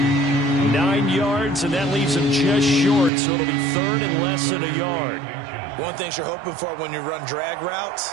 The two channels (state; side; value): drops out; left; at 3.1 s